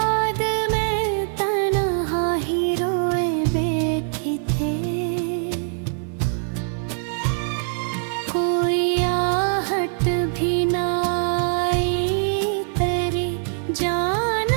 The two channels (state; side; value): silent; left; digital silence